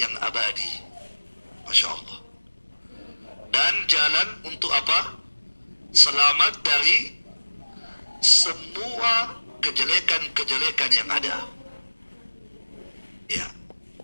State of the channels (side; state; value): both; inverted; correlation -1.00